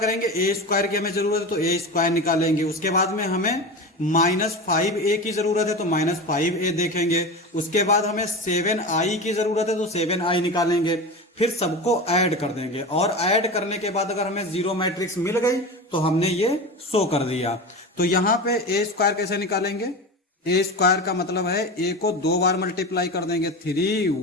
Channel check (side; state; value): both; normal; correlation 0.27